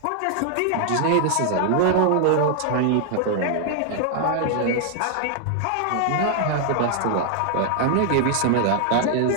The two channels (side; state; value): both; different; correlation 0.00